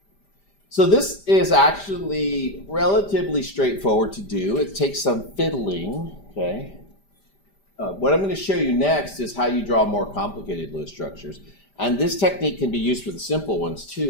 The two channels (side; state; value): right; late; 5.0 ms